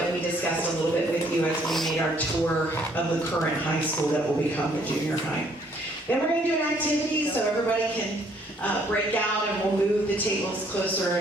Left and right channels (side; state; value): both; normal; correlation 0.64